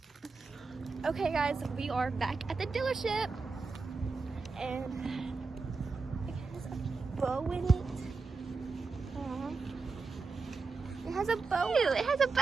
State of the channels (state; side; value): quieter; left; 4.2 dB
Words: Okay, guys, we are back at the dealership, and it has a bow in it. It has a bow. Ew, it has a